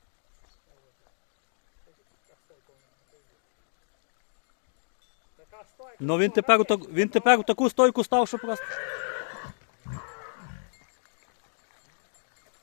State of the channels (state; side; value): silent; right; digital silence